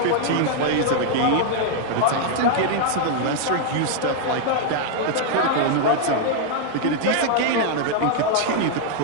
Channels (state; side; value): different; both; correlation 0.00